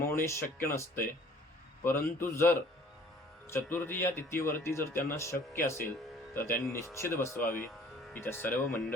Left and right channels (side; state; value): both; normal; correlation 0.52